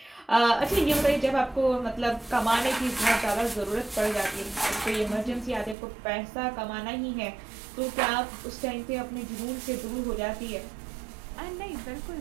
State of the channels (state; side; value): drops out; left; at 5.8 s